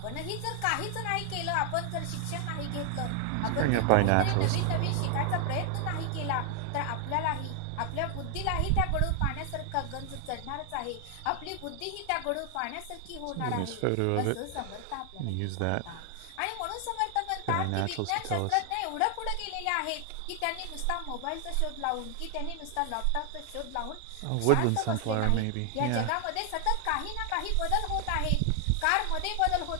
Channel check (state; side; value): different; both; correlation 0.00